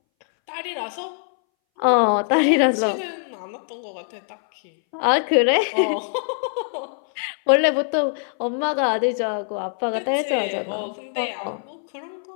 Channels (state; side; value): silent; right; 62 dB below the other